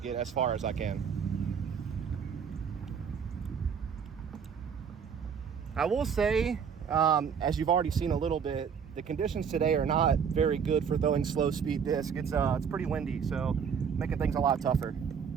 as far as I can. I will say, as you've already seen a little bit, the conditions today are not very good for throwing slow speed disc. It's pretty windy, so making things a lot tougher.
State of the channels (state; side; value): quieter; left; 7.0 dB